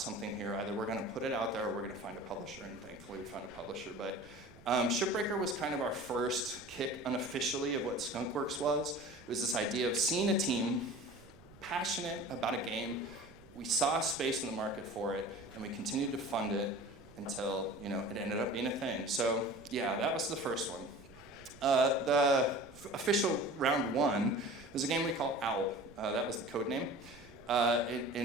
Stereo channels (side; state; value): right; noise; rumble, 22 dB below the sound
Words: here. Either we're going to put it out there or we're going to find a publisher. And thankfully we found a publisher. But Shipbreaker was kind of our first kick unofficially of what Skunkworks was. It was this idea of seeing a team passionate about a game. We saw a space in the market for it, and we continued to fund it until it ended up being a thing. So yeah, that was the first one. The official round 1 was a game we call Owl. That was the code name.